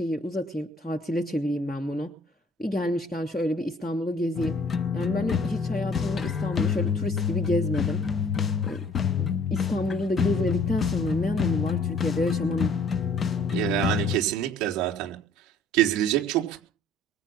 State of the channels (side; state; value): both; normal; correlation 0.54